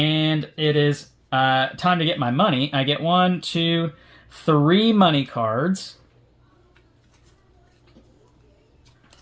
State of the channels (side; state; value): both; identical; correlation 1.00